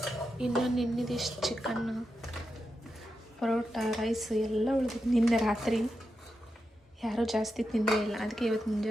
ಇನ್ನು ನಿನ್ನಿದಿಷ್ಟು ಚಿಕನ್ನು, ಪರೋಟ, ರೈಸ್ ಎಲ್ಲ ಉಳಿದಿತ್ತು ನಿನ್ನೆ ರಾತ್ರಿ. ಯಾರೂ ಜಾಸ್ತಿ ತಿಂದೇ ಇಲ್ಲ, ಅದಕ್ಕೆ ಇವತ್ತು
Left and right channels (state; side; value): normal; both; correlation 0.88